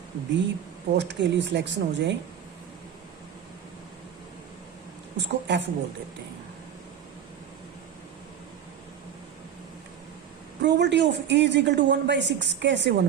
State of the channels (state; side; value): quieter; left; 9.0 dB